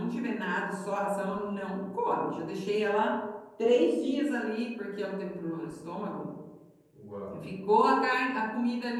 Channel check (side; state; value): both; identical; correlation 1.00